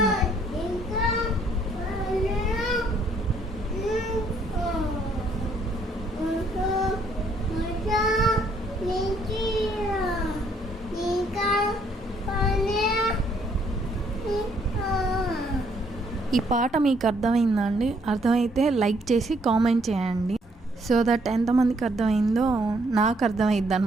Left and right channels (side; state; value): both; normal; correlation 0.68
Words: ఈ పాట మీకు అర్థమైందా అండి? అర్థమైతే లైక్ చేసి కామెంట్ చేయండి, సో దట్ ఎంతమందికి అర్థమైందో నాకు అర్థమైద్ది